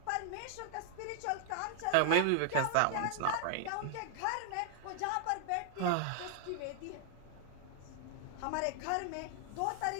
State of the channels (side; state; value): both; different; correlation 0.00